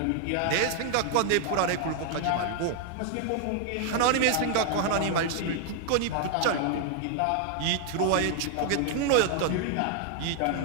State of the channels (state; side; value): different; both; correlation 0.00